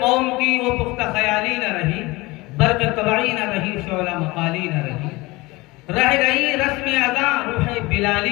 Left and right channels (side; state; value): right; quieter; 22.0 dB